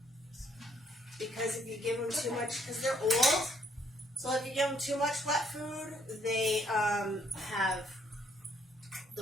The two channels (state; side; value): normal; both; correlation 0.68